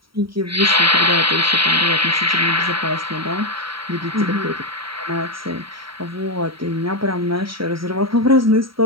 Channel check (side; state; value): left; late; 0.75 ms